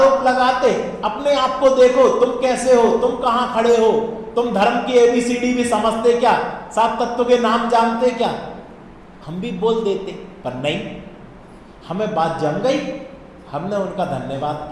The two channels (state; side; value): identical; both; correlation 1.00